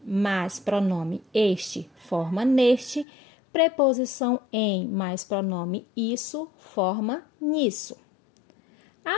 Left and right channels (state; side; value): drops out; right; at 3.1 s